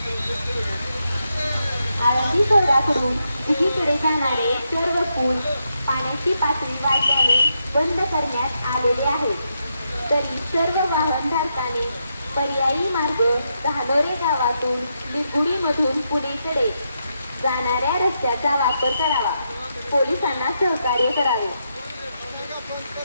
आळंदी शहराकडून उजवीकडे जाणारे सर्व पूल पाण्याची पातळी वाढल्याने बंद करण्यात आलेले आहेत. तरी सर्व वाहनधारकांनी पर्यायी मार्ग धानोरे गावातून निगुडीमधून पुणेकडे जाणाऱ्या रस्त्याचा वापर करावा. पोलिसांना सहकार्य करावे.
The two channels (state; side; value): inverted; both; correlation -0.83